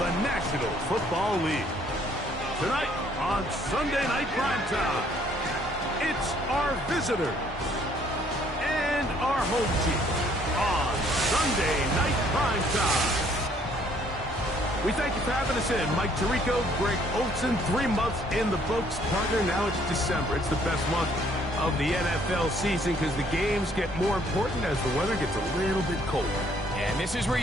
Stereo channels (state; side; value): normal; both; correlation 0.63